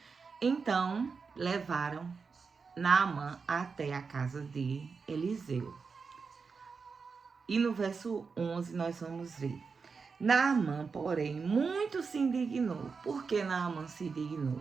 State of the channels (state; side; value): quieter; left; 5.1 dB